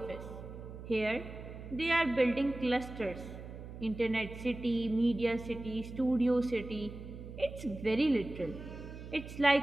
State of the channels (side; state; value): right; noise; hum, 12 dB below the sound